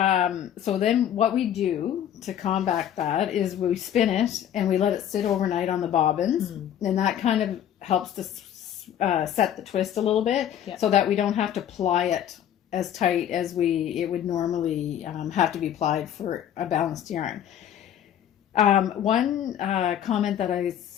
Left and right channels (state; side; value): quieter; right; 10.2 dB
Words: so then what we do to combat that is we spin it and we let it sit overnight on the bobbins, and that kind of helps to set the twist a little bit, so that we don't have to ply it as tight as it would normally have to be plied for a balanced yarn. One comment that I